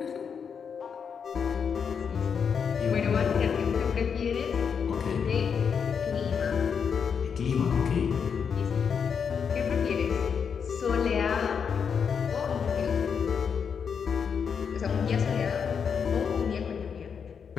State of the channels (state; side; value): quieter; right; 6.7 dB